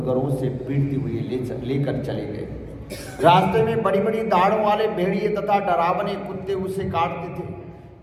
से पीटते हुए लेकर चले गए। रास्ते में बड़ी बड़ी दाढ़ों वाले भेड़िए तथा डरावने कुत्ते उसे काटते थे।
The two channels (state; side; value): identical; both; correlation 1.00